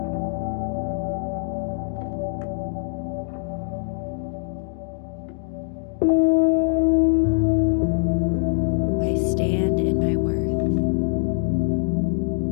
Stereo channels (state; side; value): silent; right; 63 dB below the other